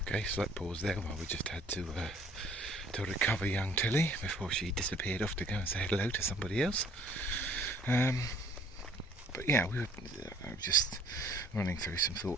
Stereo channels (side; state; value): both; normal; correlation 0.57